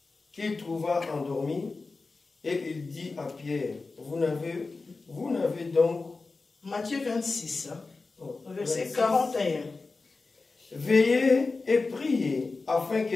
qu'il trouva endormis, et il dit à Pierre, vous n'avez donc... Matthieu 26, verset 26. 41. Veillez et priez, afin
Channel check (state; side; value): quieter; right; 3.9 dB